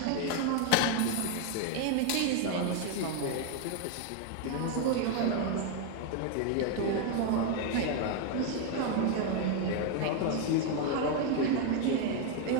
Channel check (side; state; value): both; different; correlation 0.01